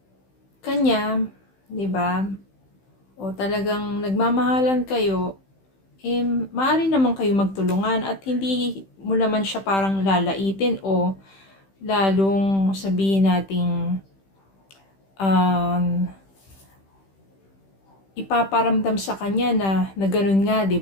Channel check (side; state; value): right; late; 15 ms